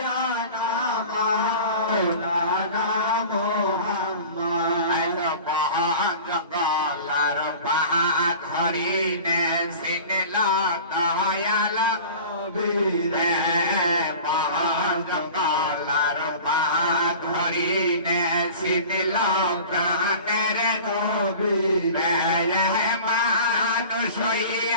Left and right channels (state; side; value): inverted; both; correlation -0.39